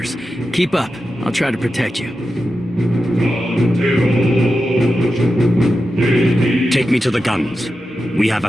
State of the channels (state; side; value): normal; both; correlation 0.91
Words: Keep up. I'll try to protect you. Take me to the guns. We have a